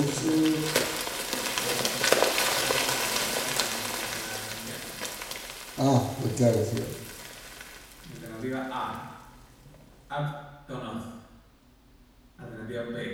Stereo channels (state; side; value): identical; both; correlation 1.00